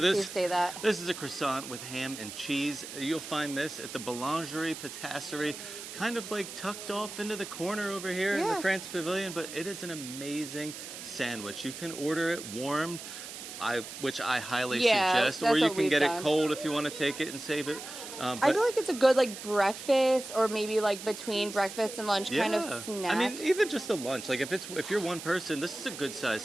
Steve say that. This is a croissant with ham and cheese. You'll find this at the Boulangerie-Patisserie, kind of like tucked off into the corner over here in the Yeah. France Pavilion, but it is an amazing sandwich. You can order it warmed, which I highly Yeah, suggest, that's or you what can we've get done. it cold if you want to take it and save it. I feel like it's a good breakfast or maybe between breakfast and lunch kind of snack. I mean, even just a lunch. Like if you're one person, this is a good sized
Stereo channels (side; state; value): right; noise; hiss, 11 dB below the sound